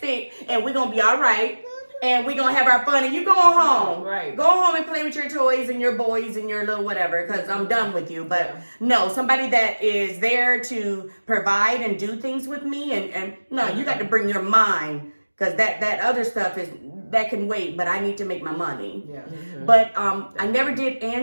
and we're going to be all right. And we're going to have our fun and you go home. Right. Go home and play with your toys and your boys and your little whatever because I'm done with you. But no, somebody that is there to provide and do things with me. And no, you got to bring your mind because that other stuff that can wait, but I need to make my money. Yeah. But I never did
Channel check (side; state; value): both; inverted; correlation -1.00